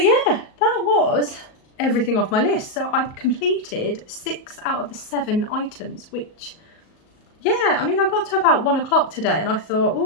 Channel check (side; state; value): right; late; 38 ms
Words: yeah, that was everything off my list. So I've completed 6 out of the 7 items, which, yeah, I mean, I got to about 1 o'clock today and I thought,